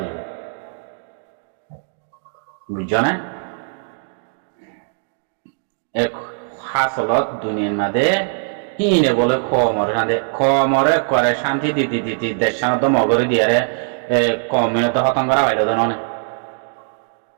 বুঝছো না এক হাসলত দুনিয়ার মাঝে হিনে বলে খমরে করে শান্তি দিতে দেশ সানত মগরে দিয়ারে কমিনত হতঙ্গরা হইল তো ননে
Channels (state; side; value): silent; left; digital silence